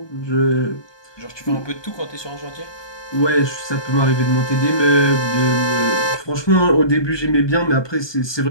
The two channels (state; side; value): late; right; 1.2 ms